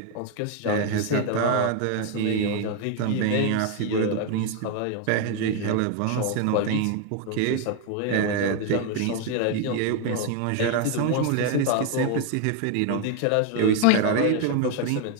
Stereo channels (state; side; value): different; both; correlation 0.01